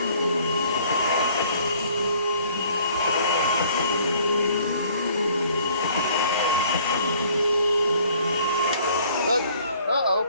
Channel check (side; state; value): both; inverted; correlation -0.58